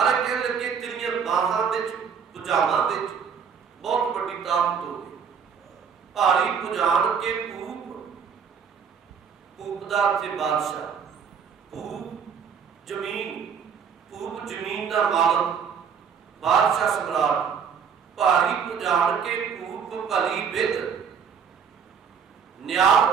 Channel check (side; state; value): left; quieter; 6.8 dB